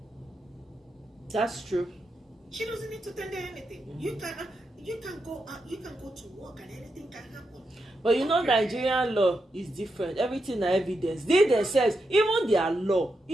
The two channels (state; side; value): normal; both; correlation 0.85